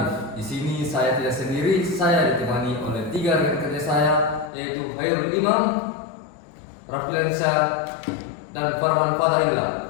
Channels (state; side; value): drops out; right; at 4.5 s